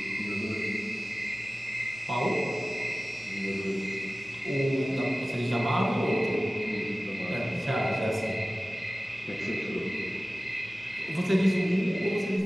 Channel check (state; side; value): normal; both; correlation 0.97